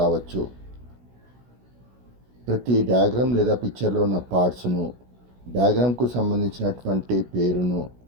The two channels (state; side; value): late; left; 16 ms